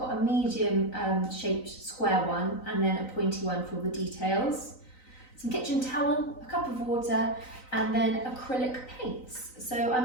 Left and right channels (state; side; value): late; right; 3.9 ms